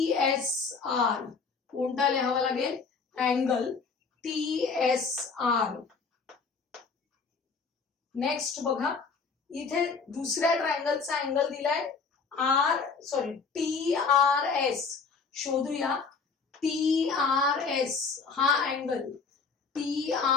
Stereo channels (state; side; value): quieter; right; 5.0 dB